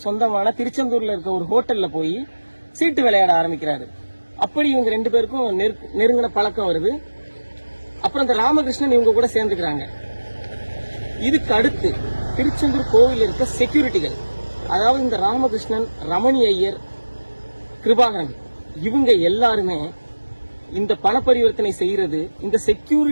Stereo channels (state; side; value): inverted; both; correlation -1.00